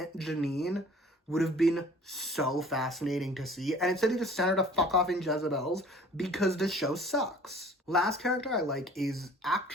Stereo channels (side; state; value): both; normal; correlation 0.49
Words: Janine would have been so fascinating to see. And instead they just sent her to fuck off in Jezebel's because the show sucks. Last character I like is